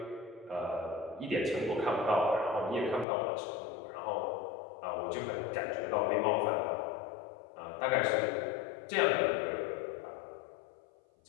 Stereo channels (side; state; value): right; drops out; at 3.1 s